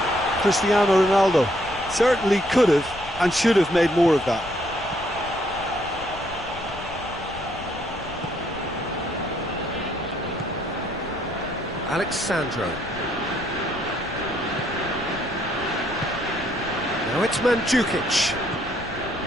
Cristiano Ronaldo certainly could have and should have made more of that. Alexandro. Now it's Mandzukic.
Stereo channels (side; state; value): left; noise; rumble, 17 dB below the sound